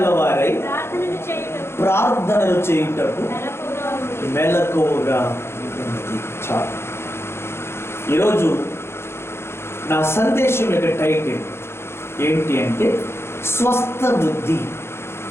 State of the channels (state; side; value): late; right; 0.12 ms